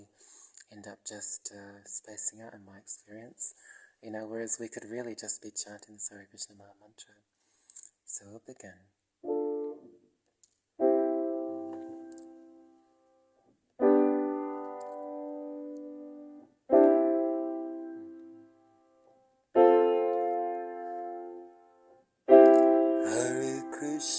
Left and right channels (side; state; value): both; identical; correlation 1.00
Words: end up just spacing out, in my experience, whereas we could really just be chanting the Hare Krishna Maha Mantra. So we'll begin. Hare